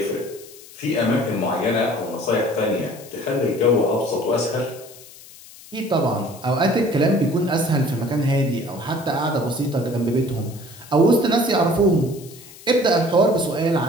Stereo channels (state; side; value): noise; left; hiss, 20 dB below the sound